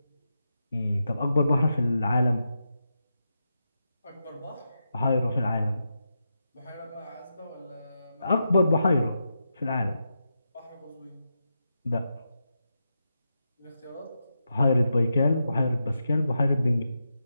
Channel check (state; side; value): inverted; both; correlation -0.87